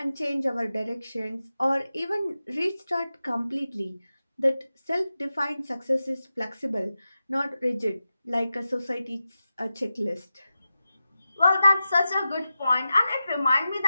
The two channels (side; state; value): both; inverted; correlation -0.92